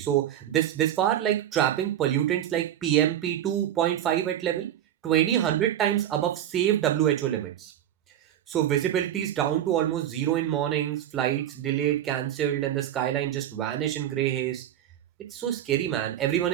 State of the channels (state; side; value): quieter; left; 11.3 dB